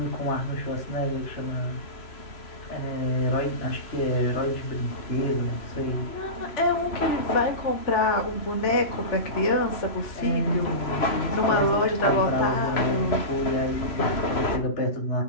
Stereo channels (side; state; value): right; late; 3.0 ms